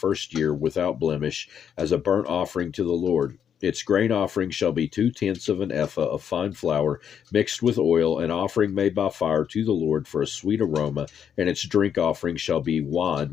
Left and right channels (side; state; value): right; quieter; 8.3 dB